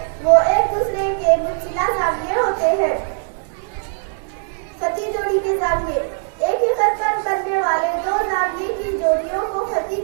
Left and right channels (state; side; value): silent; left; digital silence